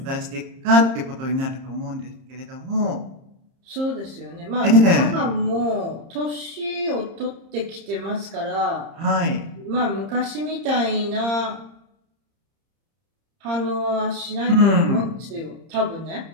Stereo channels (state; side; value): late; left; 30 ms